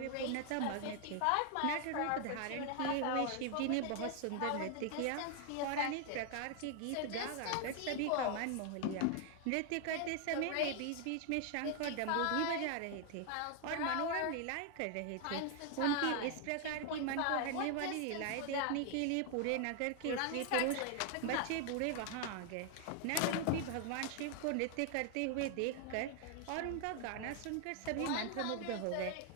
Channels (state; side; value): different; both; correlation 0.00